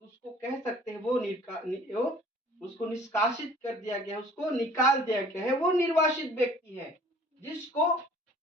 उसको कह सकते हैं वो उसको निष्कासित कर दिया गया, उसको निकाल दिया गया है, वो निर्वासित व्यक्ति है जिसको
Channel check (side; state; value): both; normal; correlation 0.52